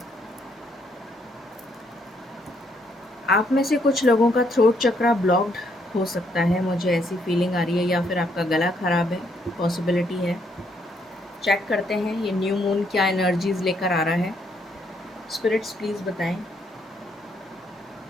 आप में से कुछ लोगों का throat चक्रा blocked हो सकता है, मुझे ऐसी फीलिंग आ रही है, या फिर आपका गला खराब है, पॉसिबिलिटी है। चेक करते हैं ये न्यू मून क्या एनर्जीज लेकर आ रहा है। स्पिरिट्स प्लीज़ बताएं,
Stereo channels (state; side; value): normal; both; correlation 0.72